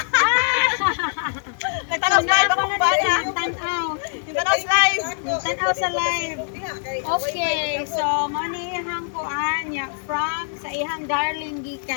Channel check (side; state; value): right; silent; digital silence